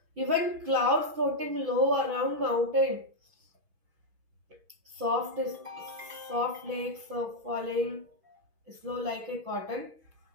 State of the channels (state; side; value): late; left; 6.2 ms